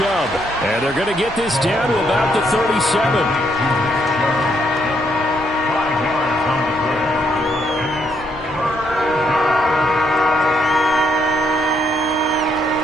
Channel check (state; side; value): normal; both; correlation 0.74